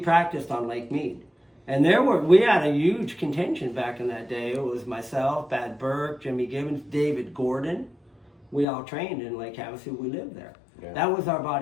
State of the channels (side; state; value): right; drops out; at 8.7 s